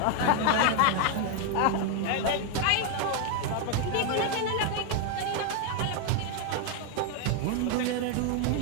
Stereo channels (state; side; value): different; both; correlation 0.01